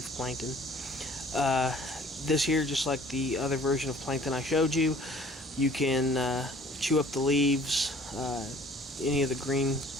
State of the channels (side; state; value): both; normal; correlation 0.53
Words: plankton. This here, just like the other version of plankton I showed you, you can chew up the leaves, any of the green